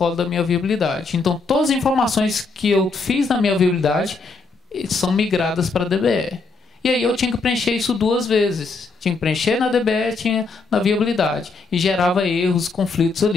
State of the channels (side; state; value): right; quieter; 4.0 dB